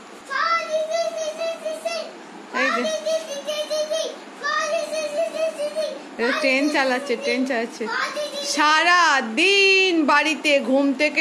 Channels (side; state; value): both; identical; correlation 1.00